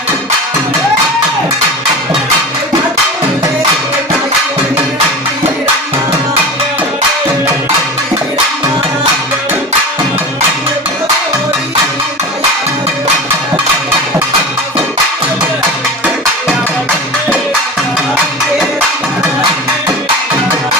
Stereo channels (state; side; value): normal; both; correlation 0.32